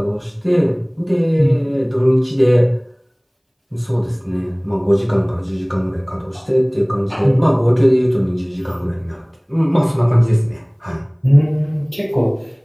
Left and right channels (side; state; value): both; identical; correlation 1.00